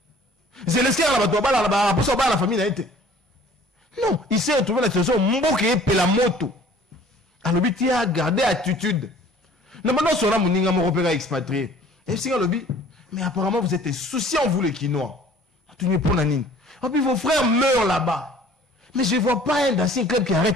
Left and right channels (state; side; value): normal; both; correlation 0.52